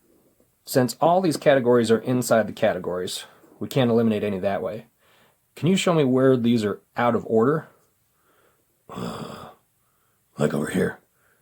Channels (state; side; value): identical; both; correlation 1.00